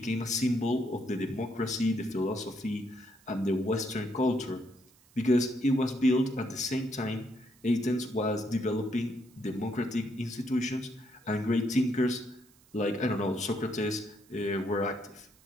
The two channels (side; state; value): right; noise; hiss, 29 dB below the sound